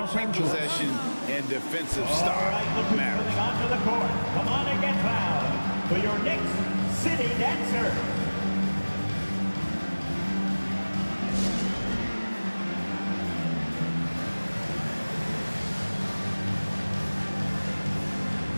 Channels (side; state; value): both; inverted; correlation -1.00